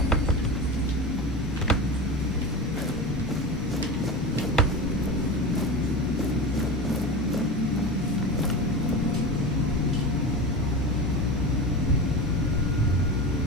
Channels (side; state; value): both; normal; correlation 0.26